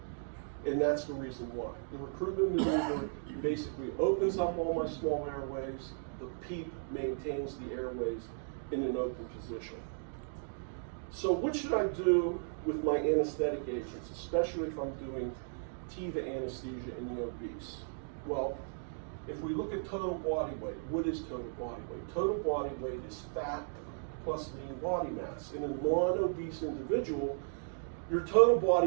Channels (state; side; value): silent; left; digital silence